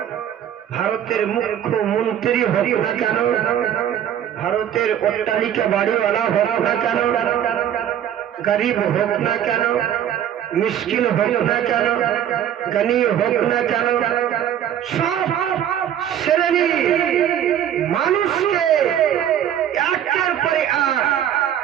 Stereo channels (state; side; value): quieter; left; 10.2 dB